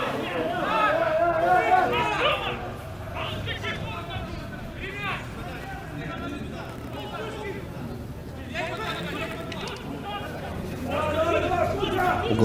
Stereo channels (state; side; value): identical; both; correlation 1.00